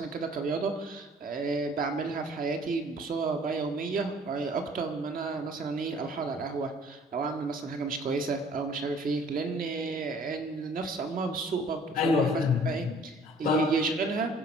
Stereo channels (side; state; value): both; normal; correlation 0.54